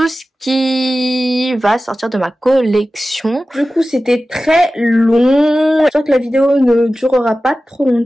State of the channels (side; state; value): both; normal; correlation 0.95